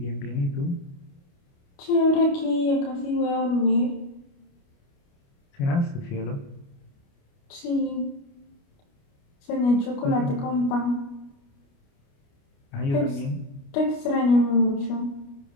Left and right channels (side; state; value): right; late; 29 ms